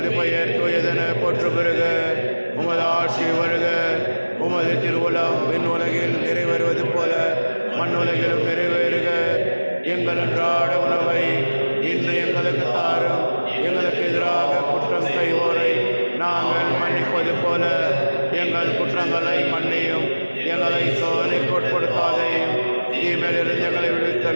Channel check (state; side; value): inverted; both; correlation -1.00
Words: பெயர் தூயதென போற்று பெறுக. உமது ஆட்சி வருக. உமது திருவுளம் விண்ணுலகில் நிறைவேறுவது போல மண்ணுலகிலும் நிறைவேறுக. எங்கள் அன்றாட உணவை இன்று எங்களுக்கு தாரும். எங்களுக்கு எதிராக குற்றம் செய்வோரை நாங்கள் மன்னிப்பது போல எங்கள் குற்றங்களை மன்னியும். எங்களை சோதனைக்கு உட்படுத்தாதையும், தீமையிலிருந்து எங்களை